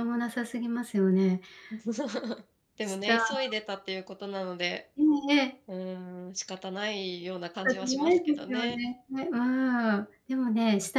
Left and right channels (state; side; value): identical; both; correlation 1.00